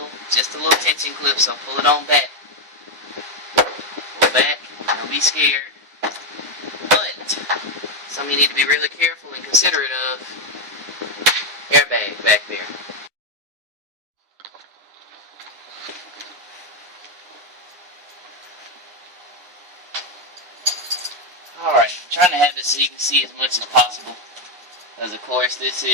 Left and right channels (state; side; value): late; left; 9.8 ms